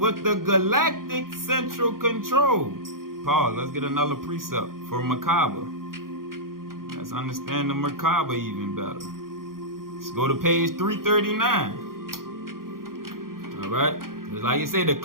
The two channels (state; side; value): late; left; 0.92 ms